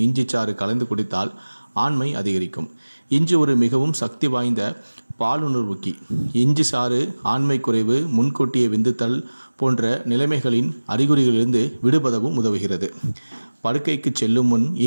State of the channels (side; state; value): both; inverted; correlation -1.00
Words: இஞ்சி சாறு கலந்து குடித்தால் ஆண்மை அதிகரிக்கும். இஞ்சி ஒரு மிகவும் சக்தி வாய்ந்த பாலுணர்வுக்கி. இஞ்சி சாறு ஆண்மை குறைவு, முன்கூட்டிய விந்துத்தல் போன்ற நிலைமைகளின் அறிகுறிகளிலிருந்து விடுபடவும் உதவுகிறது. படுக்கைக்கு செல்லும் முன்